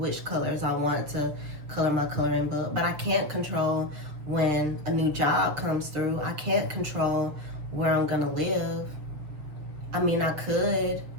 colors I want to color my coloring book, but I can't control when a new job comes through. I can't control where I'm gonna live. I mean, I could,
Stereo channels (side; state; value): left; late; 6.2 ms